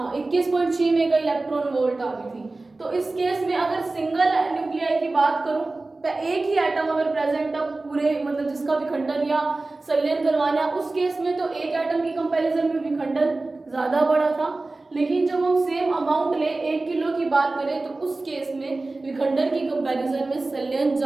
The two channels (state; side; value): quieter; left; 3.2 dB